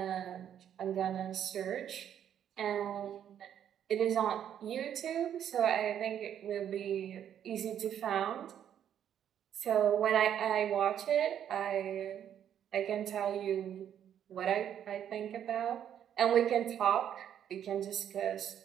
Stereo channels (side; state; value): left; quieter; 9.6 dB